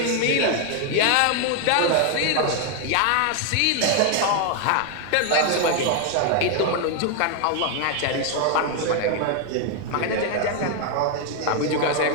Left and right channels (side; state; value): both; different; correlation 0.01